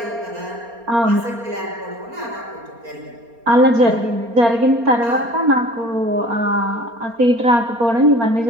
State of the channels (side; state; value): left; late; 4.3 ms